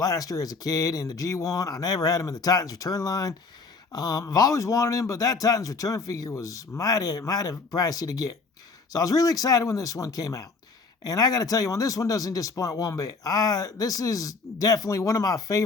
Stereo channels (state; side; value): quieter; right; 4.3 dB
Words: as a kid in the G1. I never had him in the Titans Return line. I've always wanted him, but that Titans Return figure was mighty pricey to get. So I was really excited when this one came out. And I got to tell you, this one doesn't disappoint one bit. This is definitely one of my